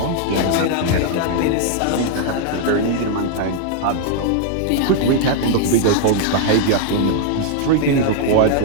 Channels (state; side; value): different; both; correlation 0.00